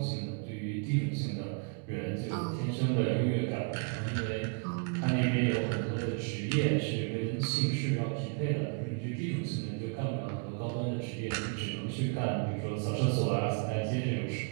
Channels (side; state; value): left; quieter; 38.2 dB